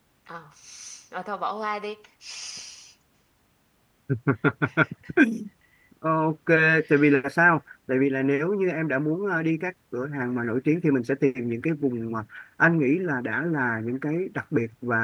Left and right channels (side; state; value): both; identical; correlation 1.00